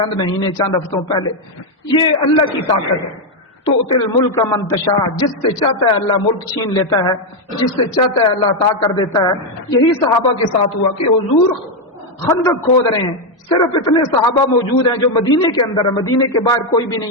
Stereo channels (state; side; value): normal; both; correlation 0.03